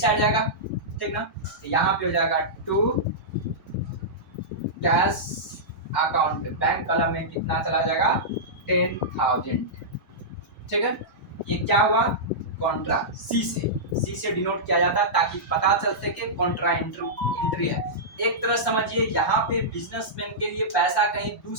जाएगा, ठीक ना, तो यहाँ पे हो जाएगा to cash account, bank column में कितना चला जाएगा 10,000। ठीक है, ये क्या हुआ, कॉन्ट्रा सी से डिनोट किया जाता है ताकि पता चल सके कॉन्ट्रा एंट्री है। एक तरह समझिए यहाँ पे बिजनेसमैन के लिए पैसा कहीं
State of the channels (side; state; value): both; normal; correlation -0.14